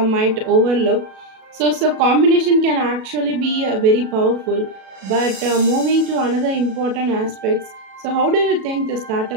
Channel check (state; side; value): late; left; 37 ms